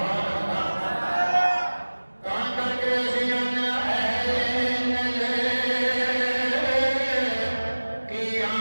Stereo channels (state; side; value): inverted; both; correlation -1.00